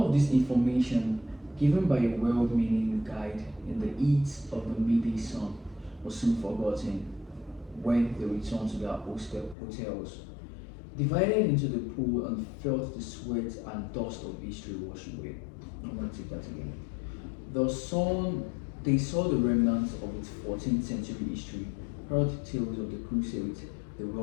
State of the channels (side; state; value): right; drops out; at 9.6 s